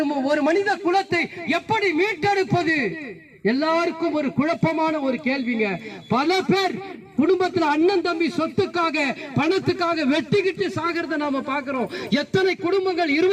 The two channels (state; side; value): identical; both; correlation 1.00